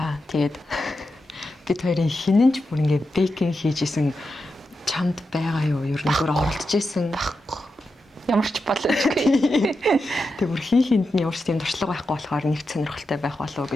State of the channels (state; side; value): normal; both; correlation 0.88